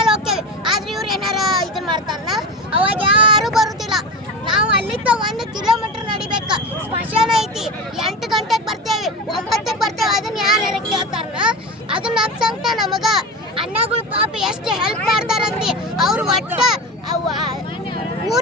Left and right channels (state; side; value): normal; both; correlation 0.26